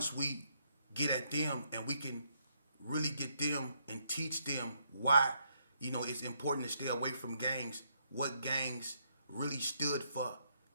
we get at them and we can really get them and teach them why, you know, it's important to stay away from gangs, what gangs really stood for,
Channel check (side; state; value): both; inverted; correlation -0.74